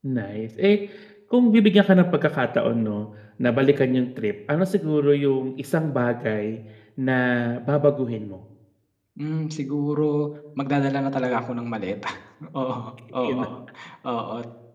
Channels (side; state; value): both; identical; correlation 1.00